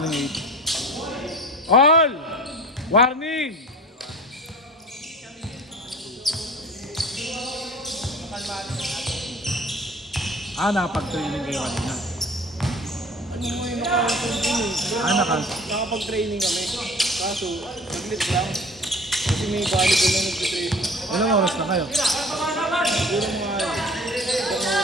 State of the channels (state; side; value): normal; both; correlation 0.43